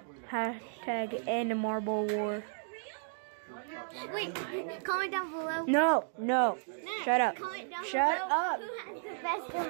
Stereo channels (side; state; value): left; silent; digital silence